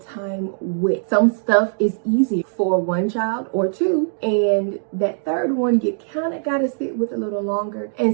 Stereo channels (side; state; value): left; silent; digital silence